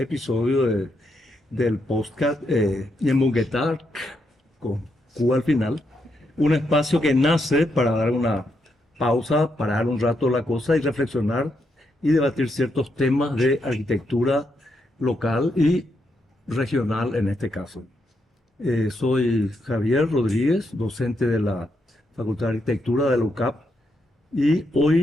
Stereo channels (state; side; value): normal; both; correlation 0.80